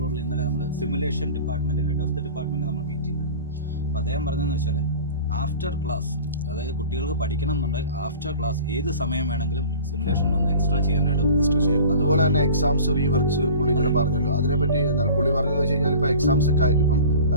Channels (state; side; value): inverted; both; correlation -0.41